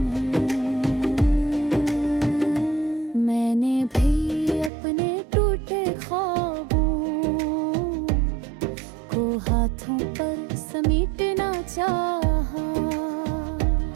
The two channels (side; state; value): left; drops out; at 4.7 s